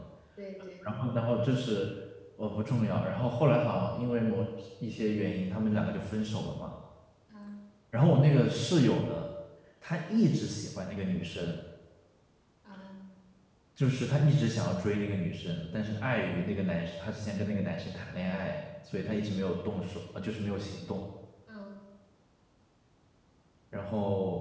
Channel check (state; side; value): identical; both; correlation 1.00